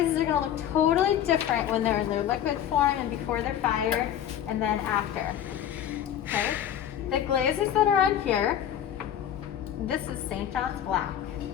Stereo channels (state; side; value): quieter; right; 10.2 dB